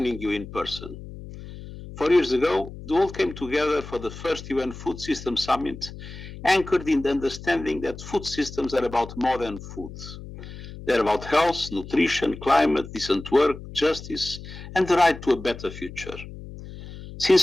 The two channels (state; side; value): noise; left; hum, 13 dB below the sound